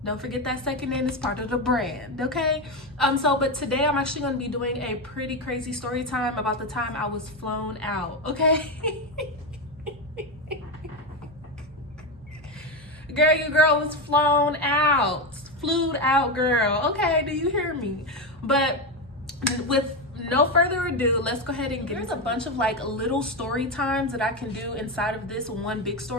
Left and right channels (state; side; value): normal; both; correlation 0.13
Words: Don't forget that second N is part of the brand, okay? But today I'm actually going to be doing a pretty crazy story time about the time I was flown out, okay? Girl, your girl was flown out. Flued out, girl. Okay, do you hear me? But with no further ado, let's go ahead and get There's a bunch of like little story times that I can do inside of this one big